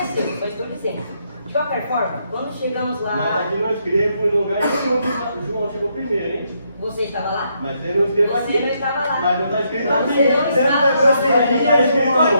só estou dizendo. De qualquer forma, quando chegamos lá... Mas aqui não escrevo em lugar nenhum que João chegou primeiro, hein? Você estava lá? Mas ele não escreveu aqui. Você não estava lá. Mas não está escrito Mas aqui. você não estava lá. Está escrito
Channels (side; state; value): both; inverted; correlation -0.76